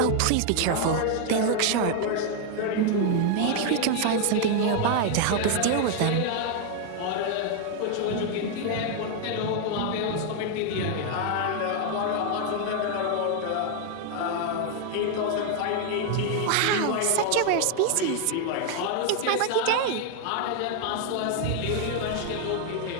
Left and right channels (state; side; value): different; both; correlation 0.00